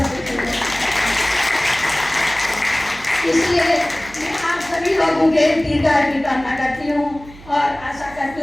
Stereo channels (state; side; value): noise; right; hum, 20 dB below the sound